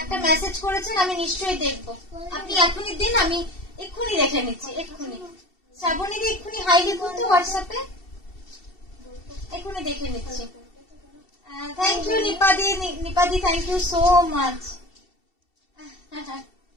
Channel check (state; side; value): late; right; 2.7 ms